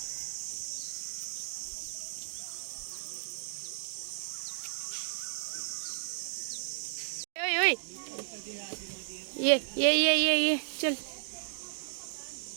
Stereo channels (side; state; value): left; silent; digital silence